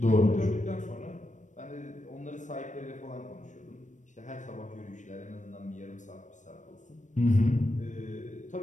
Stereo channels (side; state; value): right; late; 0.36 ms